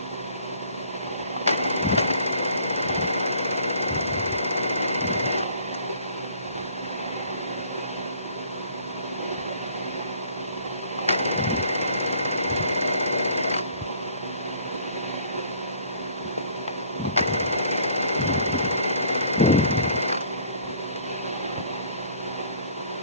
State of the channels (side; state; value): both; inverted; correlation -0.54